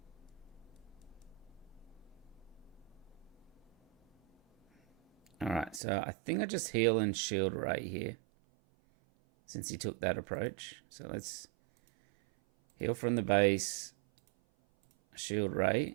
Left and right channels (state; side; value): drops out; left; at 5.8 s